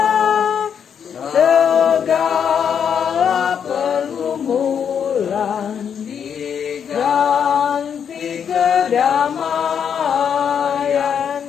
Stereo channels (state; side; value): quieter; right; 7.8 dB